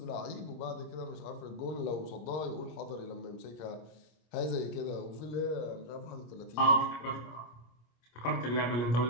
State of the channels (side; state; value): right; late; 25 ms